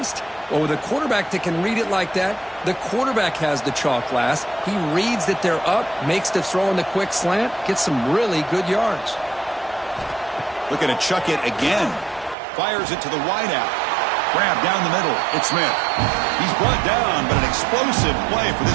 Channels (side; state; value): left; drops out; at 12.4 s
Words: Well, with a quarterback that can read it like that, the quarterback has the chalk last. He reads that they're up, makes the throw in the quick slant, gets some really good yards. Looking to chuck it again. Fires it to the wideout. Grab down the middle. It's Smith. He's brought down, but an explosive play for